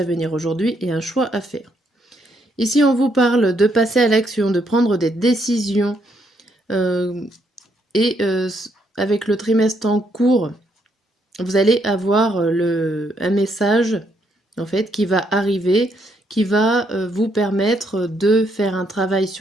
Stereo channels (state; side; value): normal; both; correlation 0.74